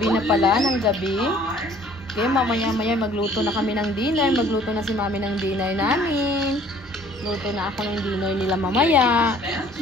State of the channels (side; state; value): both; normal; correlation 0.55